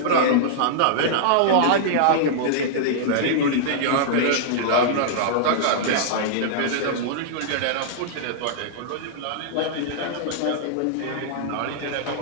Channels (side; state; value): both; different; correlation -0.02